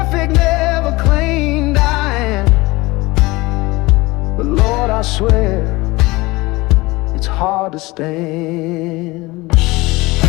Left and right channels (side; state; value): right; quieter; 21.8 dB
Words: never claimed I am, but Lord, I swear it's hard to stand.